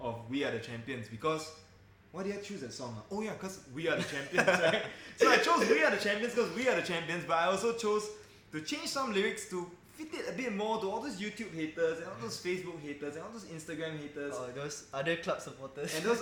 "We Are the Champions" because why did I choose that song? Oh yeah, because we are the champions, right? So I chose "We Are the Champions" because we are the champions, but I also chose to change some lyrics to fit it a bit more to all those YouTube haters and all those Facebook haters and all those Instagram haters. Oh, those other club supporters. And those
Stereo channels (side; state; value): both; identical; correlation 1.00